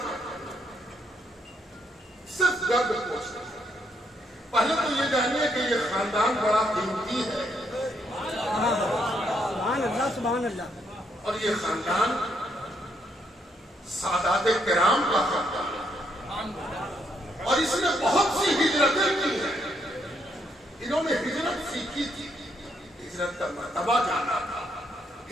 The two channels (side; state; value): both; normal; correlation 0.74